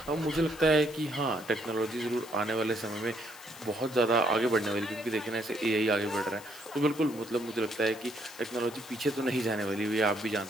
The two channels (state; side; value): noise; left; hiss, 18 dB below the sound